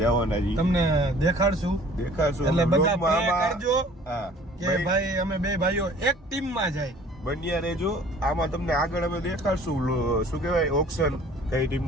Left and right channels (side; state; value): both; normal; correlation 0.51